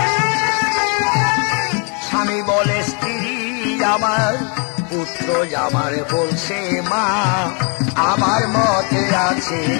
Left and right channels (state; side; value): quieter; right; 36.9 dB